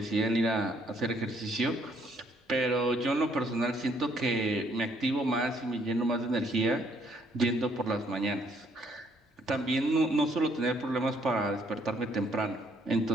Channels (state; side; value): normal; both; correlation 0.67